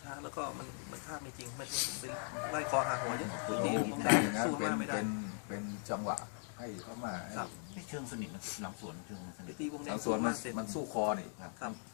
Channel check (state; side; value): silent; right; 52 dB below the other